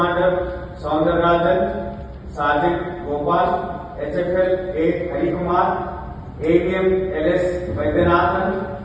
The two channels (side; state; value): both; identical; correlation 1.00